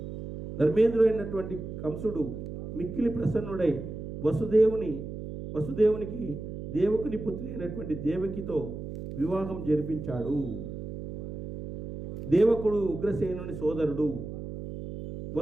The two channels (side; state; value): right; noise; hum, 8 dB below the sound